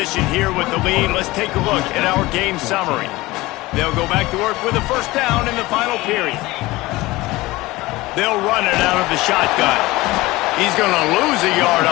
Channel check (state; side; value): quieter; right; 19.8 dB